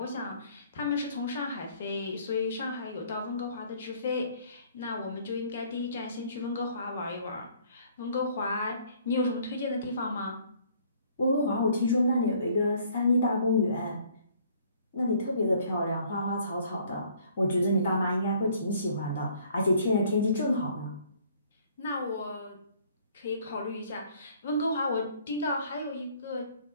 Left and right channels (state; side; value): inverted; both; correlation -0.59